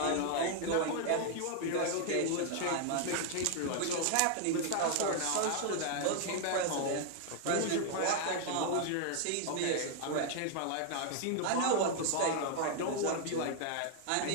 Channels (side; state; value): both; different; correlation 0.00